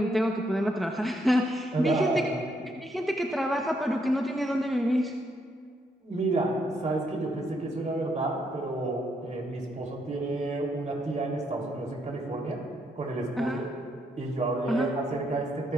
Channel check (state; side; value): normal; both; correlation 0.75